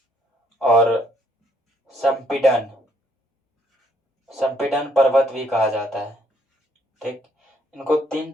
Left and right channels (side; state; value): both; normal; correlation 0.67